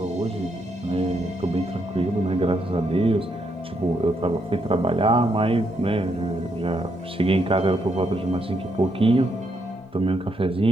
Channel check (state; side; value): normal; both; correlation 0.77